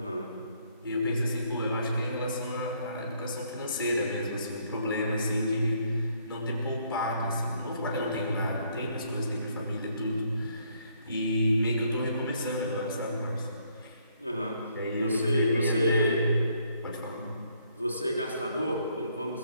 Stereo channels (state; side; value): inverted; both; correlation -0.68